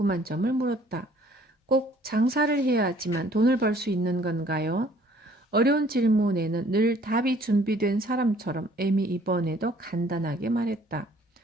점을 물었다. 꼭 장사를 해야지만 돈을 벌 수 있는 건가요? 어려운 질문에는 늘 답이 준비된 사람처럼 M이 이번에도 간단하게 말했다.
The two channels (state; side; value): normal; both; correlation 0.58